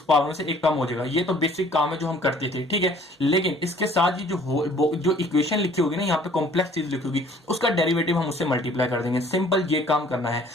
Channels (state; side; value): normal; both; correlation 0.55